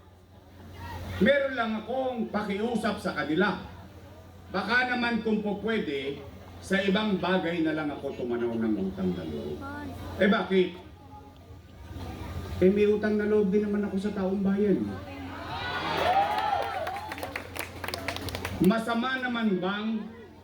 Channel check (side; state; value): both; identical; correlation 1.00